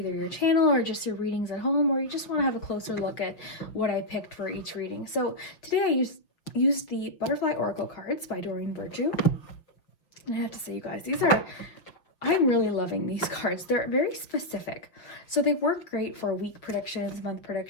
your channel or just your readings at home, or you just want to have a closer look at what I picked for each reading. So today I used the Butterfly Oracle cards by Doreen Virtue. And I have to say, you guys, I'm really loving these cards. They're very specific. So they work great for week predictions, month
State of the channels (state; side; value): late; right; 5.7 ms